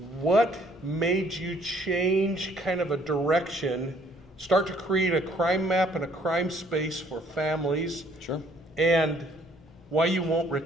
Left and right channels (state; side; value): normal; both; correlation 0.62